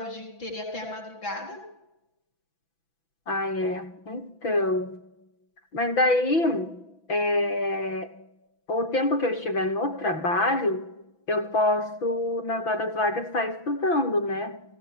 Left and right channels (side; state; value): right; late; 6.0 ms